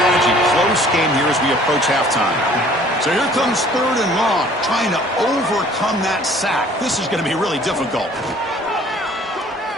Close game here as we approach halftime. So here comes 3rd and long, trying to overcome that sack. This is going to be really difficult.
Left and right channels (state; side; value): normal; both; correlation 0.54